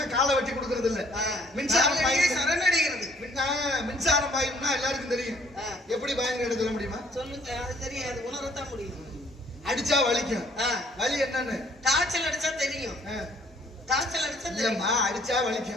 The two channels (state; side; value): normal; both; correlation 0.61